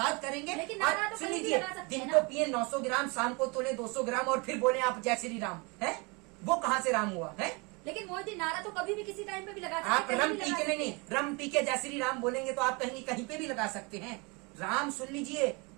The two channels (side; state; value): left; quieter; 29.0 dB